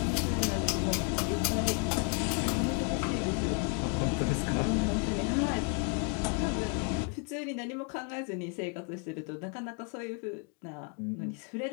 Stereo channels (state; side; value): quieter; right; 34.9 dB